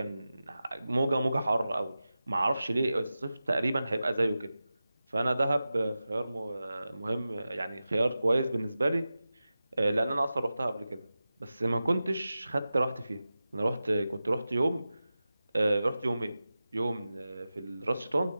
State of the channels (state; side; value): inverted; both; correlation -0.94